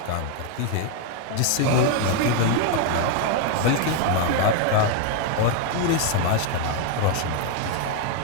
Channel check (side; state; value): both; different; correlation 0.01